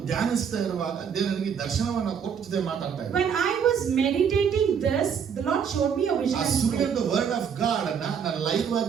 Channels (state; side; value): quieter; left; 7.3 dB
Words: ಧ್ಯಾನಿಸ್ತಾ ಇರುವಾಗ ದೇವರು ನನಗೆ ದರ್ಶನವನ್ನ ಕೊಟ್ಟು ಜೊತೆ ಮಾತಾಡ್ತಾ ಇದ್ದ. When I was meditating this, the Lord showed me a vision. ಆ ಸುಳ್ಳಿನ ವರ್ಡ್ ಆಫ್ ಗಾಡ್ ಅನ್ನ ನಾನು ಲೈವ್